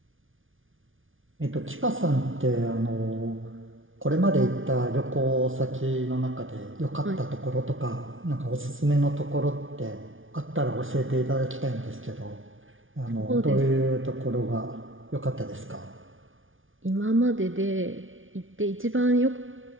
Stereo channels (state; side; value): late; left; 0.57 ms